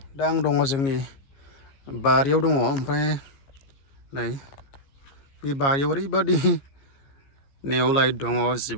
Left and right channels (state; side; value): late; right; 15 ms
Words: दा आं दङ जोंनि बारियाव दङ ओमफ्राय नै बे बारियाव ओरैबादि नेवलाय दङ